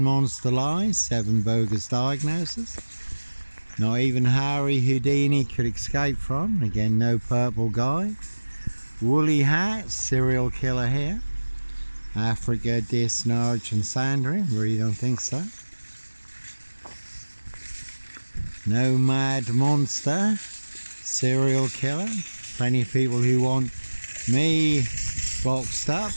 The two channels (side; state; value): both; inverted; correlation -1.00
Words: monster lies, 7 bogus diagnoses. Not even Harry Houdini could escape from. Again, no purple guy. Woolly hat, serial killer here. Africa, Dis, Norwich and Sandringham. Really don't think so. No mad monster, serial killer. Plenty of people who want me boxed up,